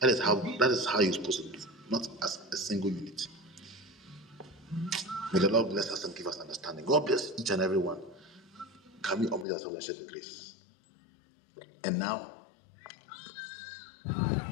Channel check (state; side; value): drops out; right; at 9.5 s